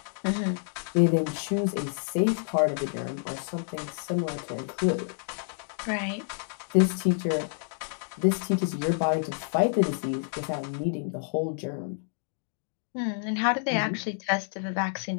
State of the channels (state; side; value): silent; right; digital silence